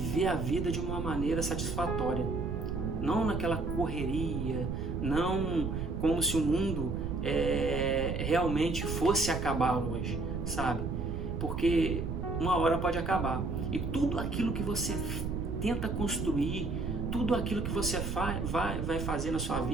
a vida de uma maneira satisfatória. Não naquela correria, não como se o mundo realmente fosse acabar hoje, sabe? Porque uma hora pode acabar. E tudo aquilo que você tenta construir, tudo aquilo que você vai fazer na sua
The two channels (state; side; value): noise; right; rumble, 3 dB below the sound